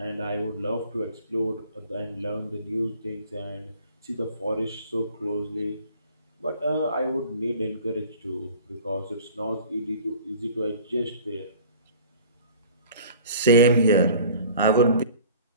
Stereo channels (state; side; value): inverted; both; correlation -0.46